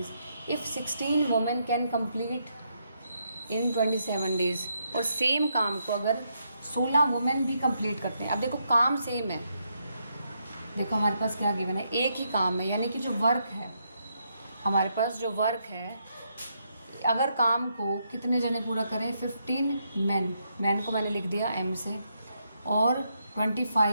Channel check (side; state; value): both; inverted; correlation -0.78